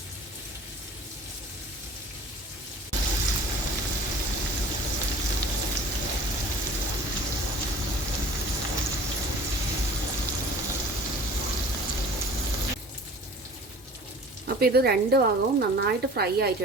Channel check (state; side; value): normal; both; correlation 0.44